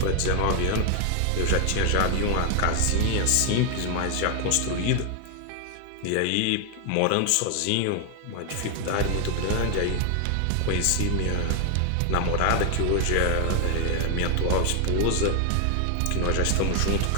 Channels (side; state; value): both; different; correlation 0.00